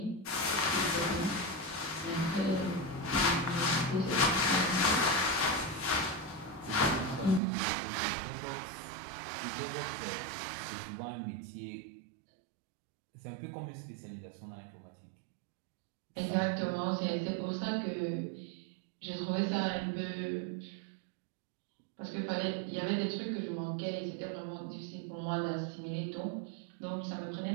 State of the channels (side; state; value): left; drops out; at 7.4 s